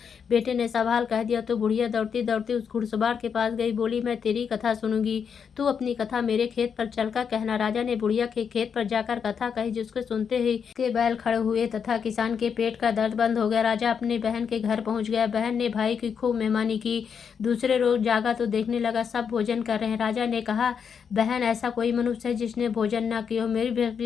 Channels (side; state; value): right; quieter; 6.9 dB